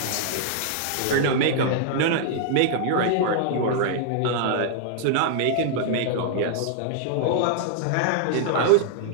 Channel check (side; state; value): both; different; correlation -0.01